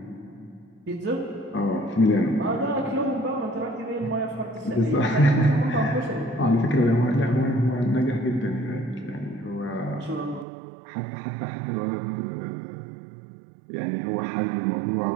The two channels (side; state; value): left; drops out; at 10.5 s